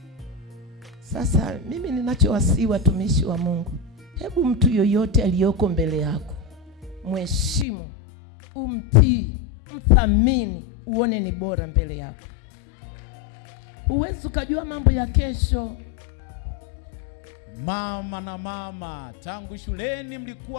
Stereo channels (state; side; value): drops out; right; at 7.7 s